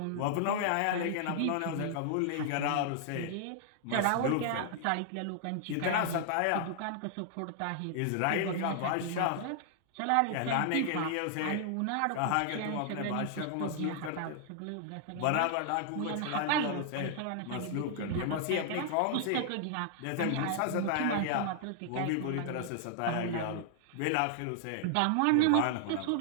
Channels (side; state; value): both; different; correlation -0.01